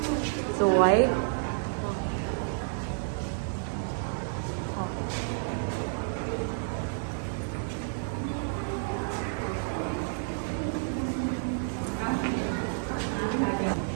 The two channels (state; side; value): silent; left; digital silence